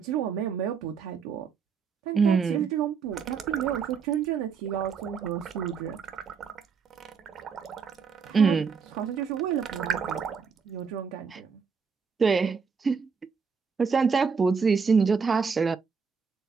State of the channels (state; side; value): quieter; left; 5.8 dB